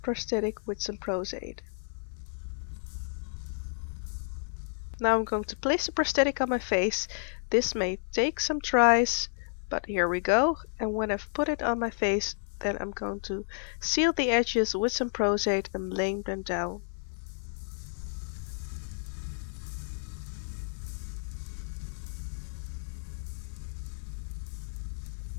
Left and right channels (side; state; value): right; silent; 57 dB below the other